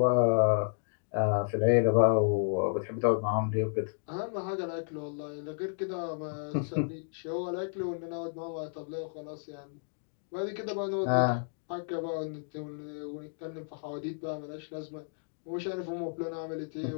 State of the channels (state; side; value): silent; right; digital silence